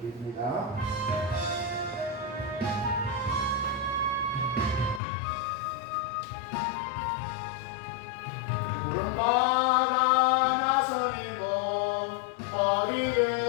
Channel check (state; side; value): drops out; right; at 5.0 s